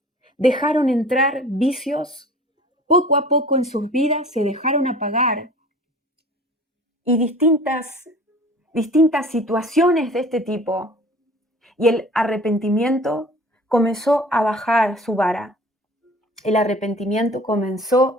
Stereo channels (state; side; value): normal; both; correlation 0.45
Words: dejaron entrar vicios, poco a poco en sus vidas se dejaron apagar y distintas situaciones de este tipo. Y el arrepentimiento comenzó a bajar su vara. El arrepentimiento